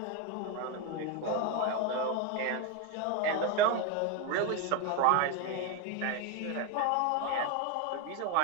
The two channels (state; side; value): different; both; correlation 0.02